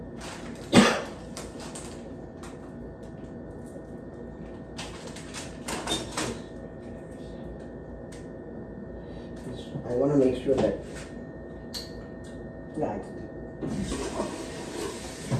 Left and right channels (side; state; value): both; identical; correlation 1.00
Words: I want to make sure that, yeah,